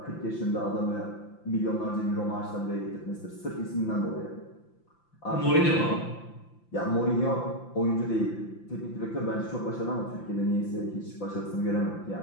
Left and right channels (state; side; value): late; right; 5.8 ms